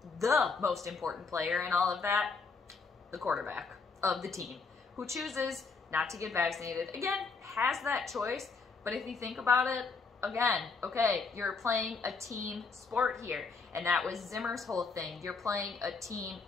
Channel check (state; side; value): quieter; right; 4.6 dB